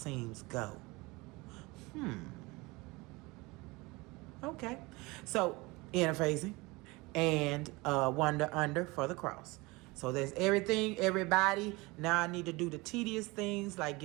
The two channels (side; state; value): left; quieter; 23.7 dB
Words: go. Okay. So, interfacing and one under for the cross. So there's everything, everybody. Now I need to do the tedious things like